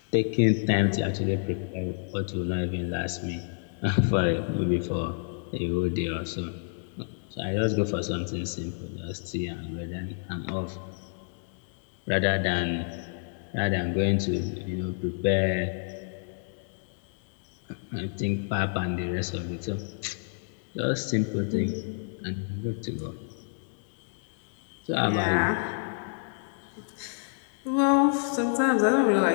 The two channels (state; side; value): silent; right; digital silence